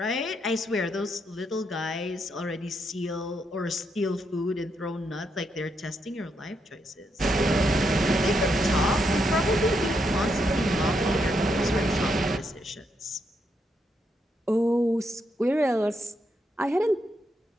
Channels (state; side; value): normal; both; correlation 0.79